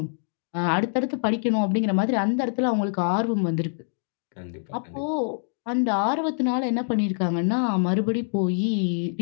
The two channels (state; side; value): silent; right; digital silence